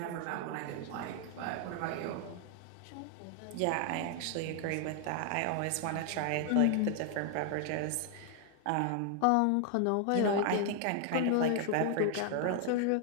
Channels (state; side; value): different; both; correlation 0.00